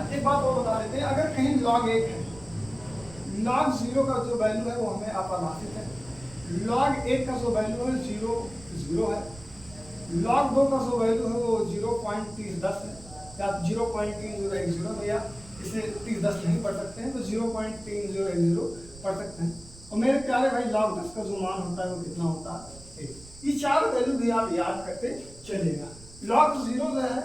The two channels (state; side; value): noise; right; rumble, 19 dB below the sound